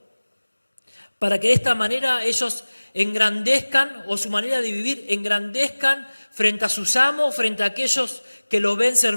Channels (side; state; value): both; inverted; correlation -1.00